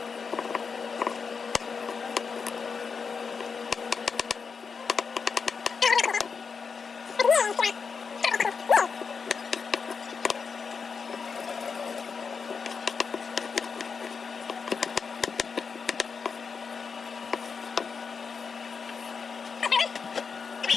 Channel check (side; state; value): right; quieter; 5.6 dB